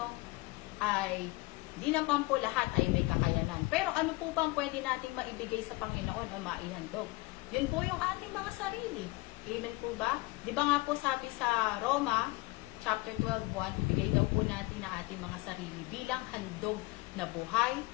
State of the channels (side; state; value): right; quieter; 22.7 dB